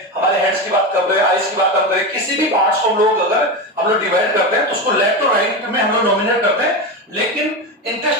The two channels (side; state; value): both; normal; correlation 0.18